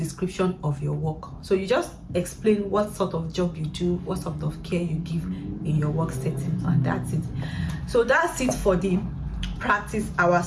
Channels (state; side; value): identical; both; correlation 1.00